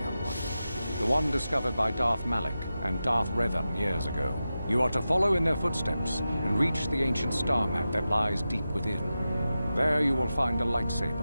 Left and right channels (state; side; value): inverted; both; correlation -0.92